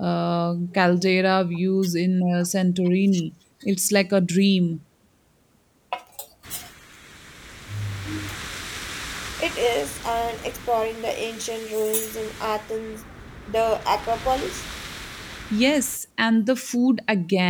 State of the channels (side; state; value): both; identical; correlation 1.00